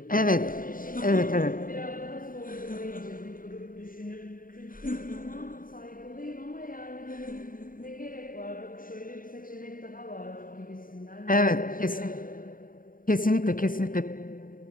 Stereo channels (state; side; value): late; right; 0.40 ms